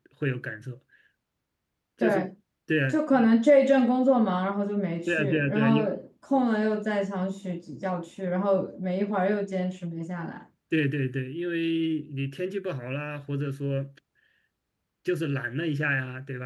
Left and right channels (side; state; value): both; identical; correlation 1.00